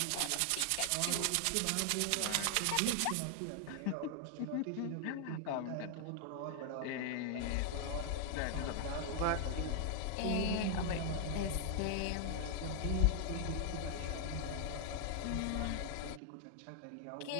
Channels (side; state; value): both; different; correlation 0.00